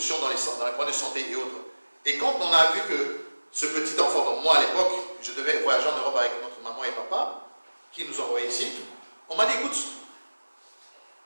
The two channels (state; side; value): inverted; both; correlation -1.00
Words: dans les points de santé et autres. Et quand on a vu que ce petit enfant, donc moi à l'époque, je devais voyager en Europe avec notre maman et papa, qui nous envoyaient ici, on m'a dit, écoute,